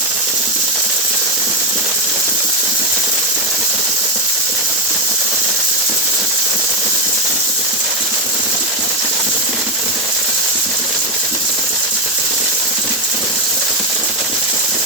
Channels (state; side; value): normal; both; correlation 0.08